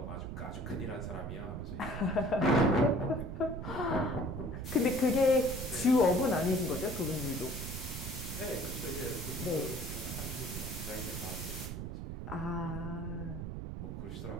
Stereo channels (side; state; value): right; noise; rumble, 6 dB below the sound